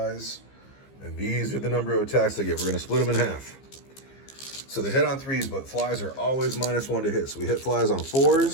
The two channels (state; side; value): late; right; 15 ms